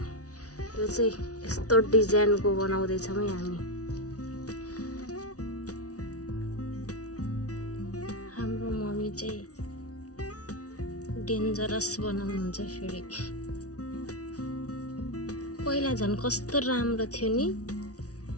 यो चाहिँ यस्तो डिजाइनको बनाउँदैछौँ है हामी। हाम्रो मम्मी चाहिँ डेन्जरस बनाउनुहुन्छ फेरि। पहिला झन् कस्तो राम्रो थियो नि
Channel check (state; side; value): late; right; 0.67 ms